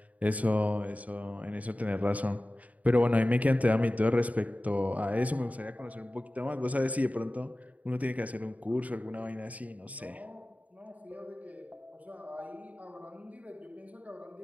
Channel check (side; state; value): left; late; 0.071 ms